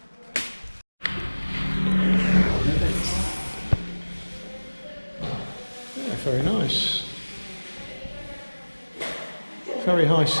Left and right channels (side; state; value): both; inverted; correlation -1.00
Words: Yeah, very nice. Very high